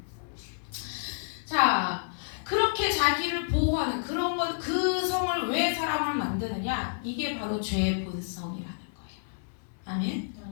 자, 그렇게 자기를 보호하는 그런 것, 그 성을 왜 사람을 만드느냐? 이게 바로 죄의 본성이라는 거예요.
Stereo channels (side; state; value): right; silent; digital silence